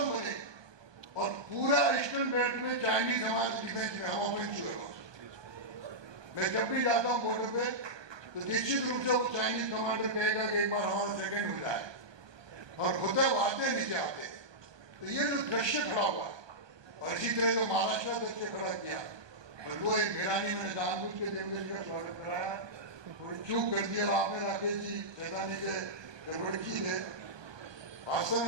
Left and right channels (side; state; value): left; late; 1.2 ms